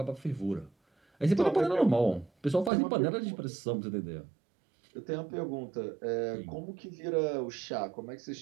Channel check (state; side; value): drops out; left; at 2.7 s